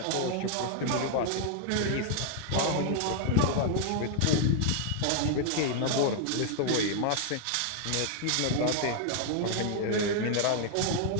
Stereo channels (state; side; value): different; both; correlation 0.00